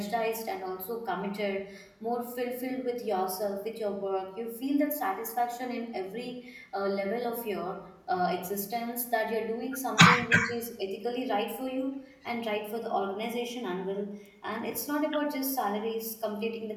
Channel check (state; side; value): identical; both; correlation 1.00